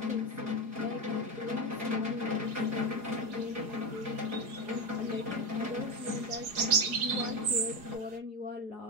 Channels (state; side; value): late; left; 4.8 ms